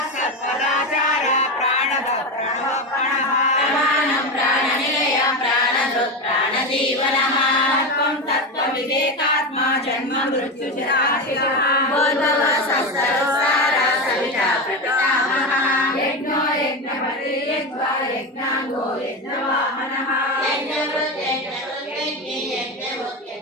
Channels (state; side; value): normal; both; correlation 0.18